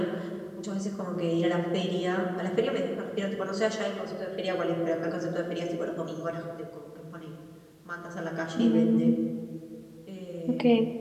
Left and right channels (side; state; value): both; identical; correlation 1.00